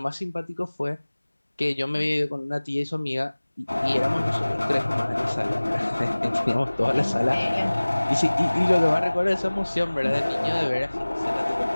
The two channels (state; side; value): inverted; both; correlation -1.00